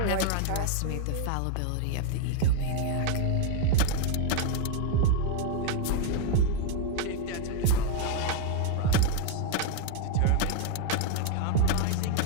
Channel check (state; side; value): different; both; correlation 0.00